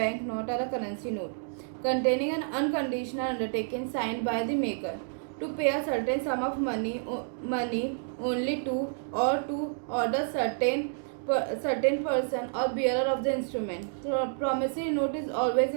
note or a currency note, containing an unconditional undertaking signed by the maker to pay a certain sum of money only to or to order certain person or bearer of the instrument. So promissory note is always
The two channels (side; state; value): left; silent; digital silence